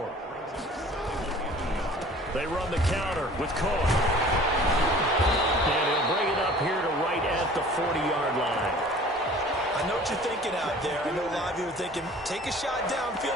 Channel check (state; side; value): normal; both; correlation 0.48